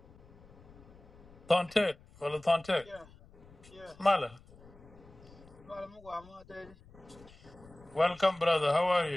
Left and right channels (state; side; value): noise; left; rumble, 23 dB below the sound